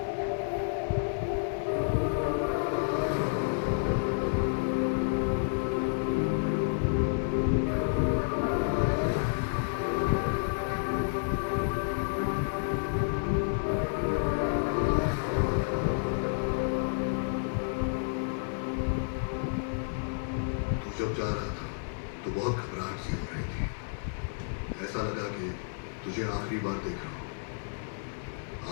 तू जब जा रहा था तो बहुत घबराहट सी हो रही थी। ऐसा लगा कि तुझे आखिरी बार देख रहा हूं।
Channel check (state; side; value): silent; right; digital silence